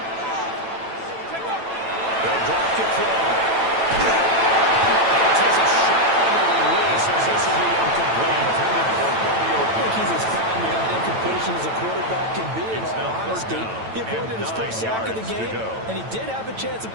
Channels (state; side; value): late; left; 9.0 ms